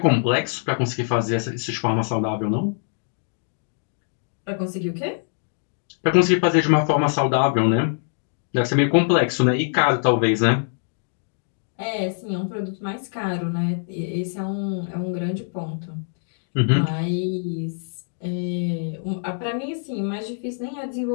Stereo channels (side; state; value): right; silent; digital silence